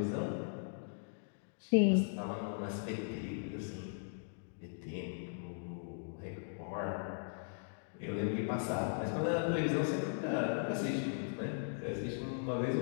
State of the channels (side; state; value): right; silent; digital silence